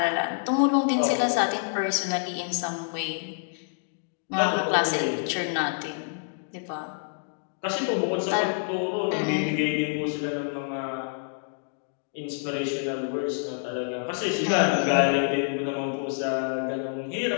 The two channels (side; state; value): right; silent; digital silence